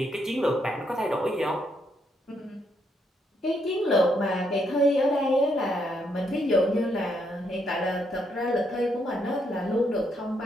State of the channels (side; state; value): both; normal; correlation 0.76